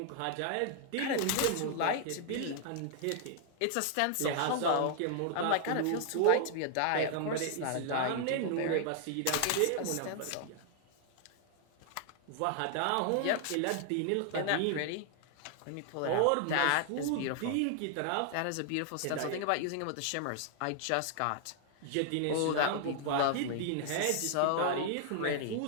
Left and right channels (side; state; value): both; different; correlation 0.00